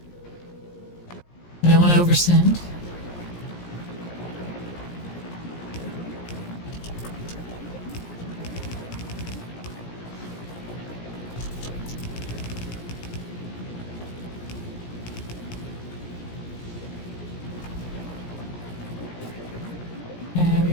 I don't want to oversend. There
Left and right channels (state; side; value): late; right; 17 ms